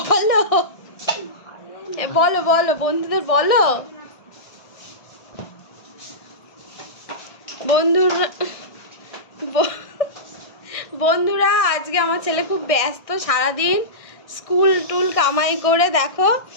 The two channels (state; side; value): late; right; 1.6 ms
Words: বলো বলো বন্ধুদের বলো। বন্ধুরা আজকে আমার ছেলে খুব ব্যস্ত, সারাদিন স্কুল টুল কামাই করে দেখো,